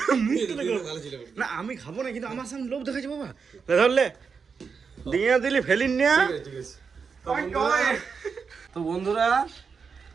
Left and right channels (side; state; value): left; quieter; 5.7 dB